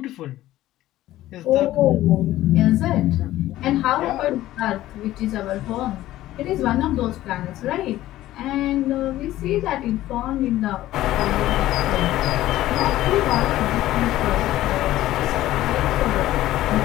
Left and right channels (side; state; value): right; quieter; 14.9 dB